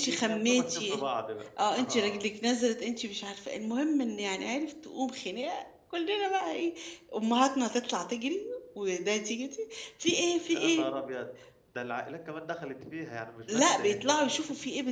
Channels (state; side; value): identical; both; correlation 1.00